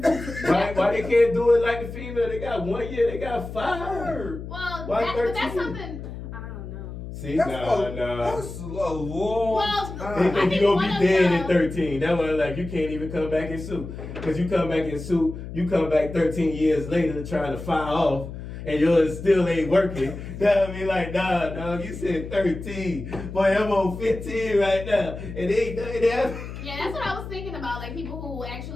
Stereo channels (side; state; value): left; noise; hum, 10 dB below the sound